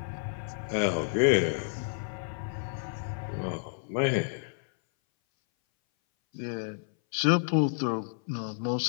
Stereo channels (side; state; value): right; silent; 58 dB below the other